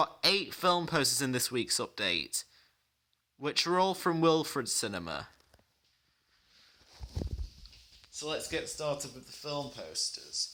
8 film posters in this week's update, which are all from Wilfrid Cinema. So let's get started with the film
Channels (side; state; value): both; identical; correlation 1.00